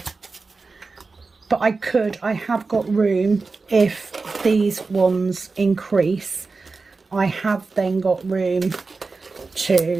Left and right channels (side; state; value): left; quieter; 4.1 dB